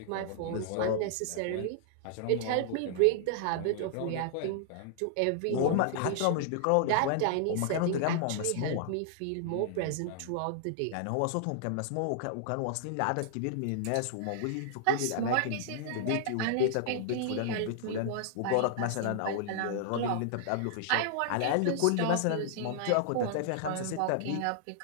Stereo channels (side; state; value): both; different; correlation -0.01